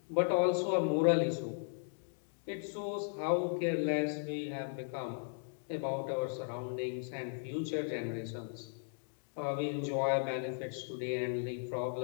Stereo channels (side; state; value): right; silent; digital silence